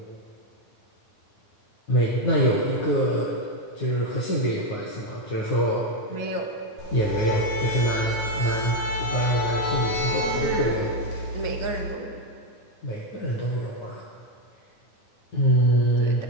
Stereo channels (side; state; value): right; late; 9.6 ms